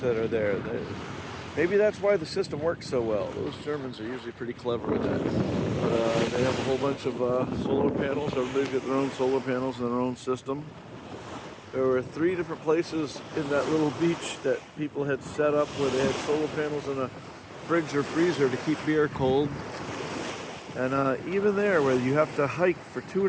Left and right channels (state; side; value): identical; both; correlation 1.00